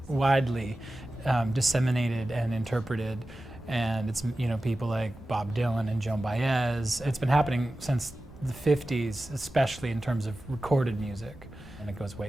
widely disseminated and interpreted, and it's people like Bob Dylan and Joan Baez. It's been happening since the 50s, especially in terms of recorded music, and it goes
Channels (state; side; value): noise; right; rumble, 20 dB below the sound